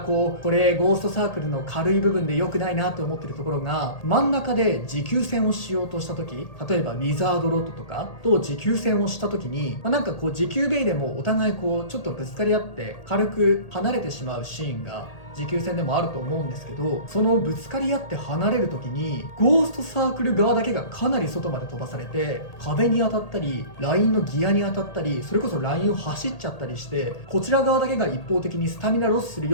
れゴーストサークルの軽い部分で良くないなと思ってるところが、真ん中で持久戦をしようとした時、例えばウィザードロッドとかと持久戦をした時に、なんか持久ベイでもお互いちょっとぶつかり合って軽く離れてしまうシーンが持久戦でもあると思うんですけど、そのぶつかり合って離れる時にゴーストサークル側だけがかなり外まで飛ばされて、壁に当たったりラインのギアに当たったり、それこそラインを走っちゃったりして、こちら側だけが一方的にスタミナロスする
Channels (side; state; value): right; late; 1.8 ms